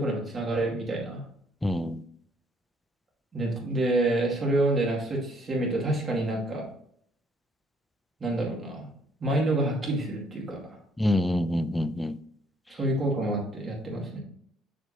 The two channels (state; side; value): normal; both; correlation 0.65